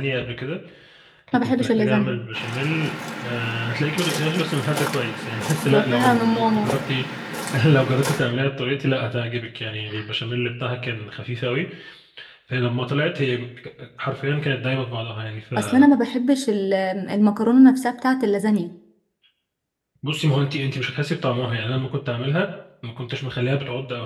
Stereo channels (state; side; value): identical; both; correlation 1.00